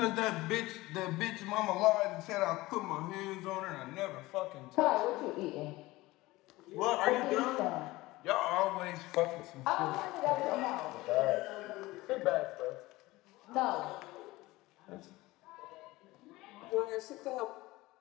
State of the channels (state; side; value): quieter; right; 19.6 dB